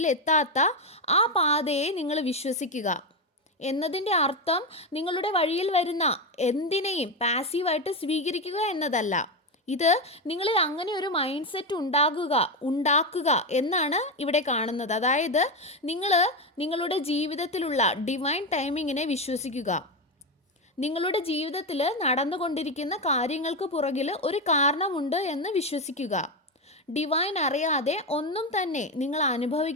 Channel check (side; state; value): both; normal; correlation 0.11